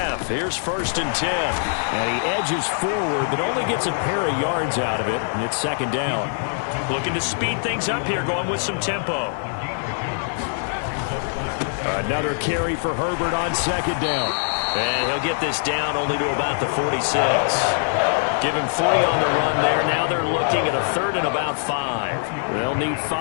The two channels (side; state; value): right; silent; digital silence